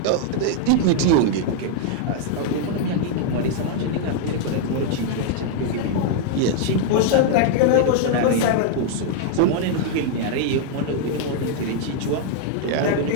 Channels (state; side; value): different; both; correlation 0.00